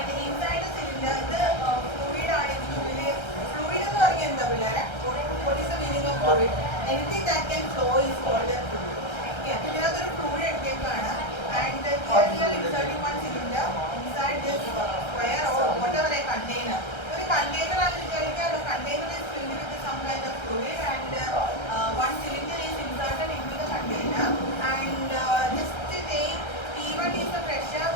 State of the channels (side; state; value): right; late; 1.3 ms